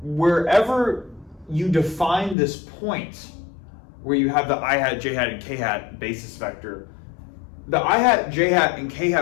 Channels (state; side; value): drops out; right; at 2.4 s